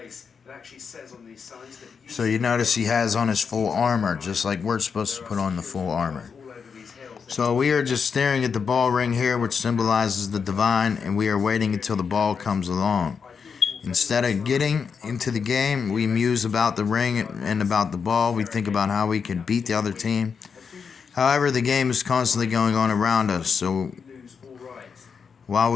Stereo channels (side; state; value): right; quieter; 6.1 dB